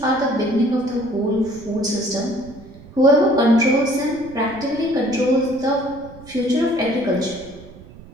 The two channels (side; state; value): right; noise; rumble, 20 dB below the sound